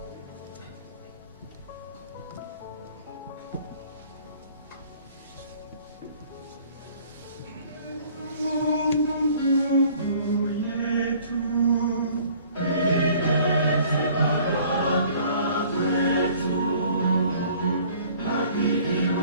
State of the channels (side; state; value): both; inverted; correlation -0.54